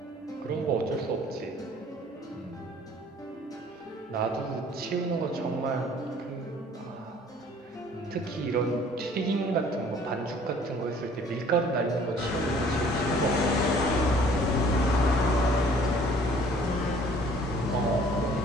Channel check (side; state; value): both; normal; correlation 0.54